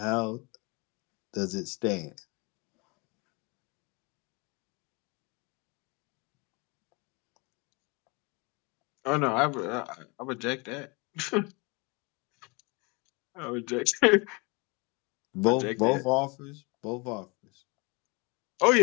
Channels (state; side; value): quieter; right; 28.8 dB